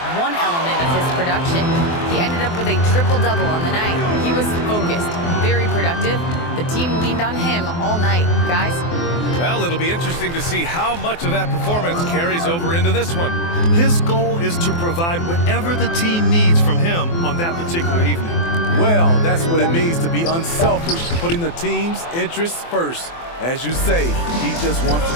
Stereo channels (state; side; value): late; right; 24 ms